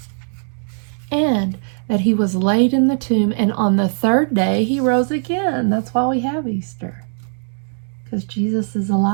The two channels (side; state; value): left; silent; 62 dB below the other